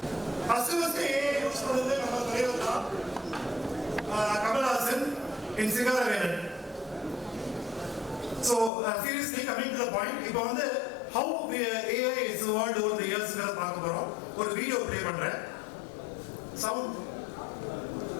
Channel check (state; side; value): drops out; right; at 8.7 s